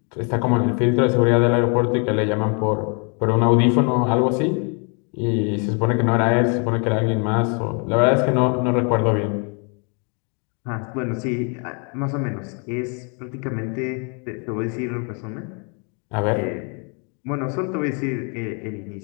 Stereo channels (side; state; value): right; quieter; 37.0 dB